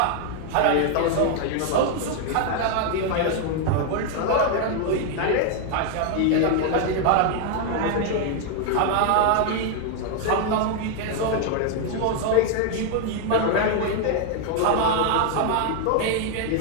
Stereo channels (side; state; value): both; different; correlation 0.00